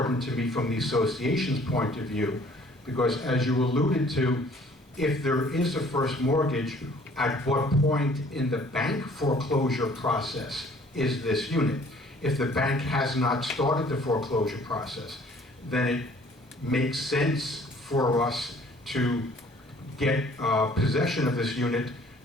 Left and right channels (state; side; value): normal; both; correlation 0.56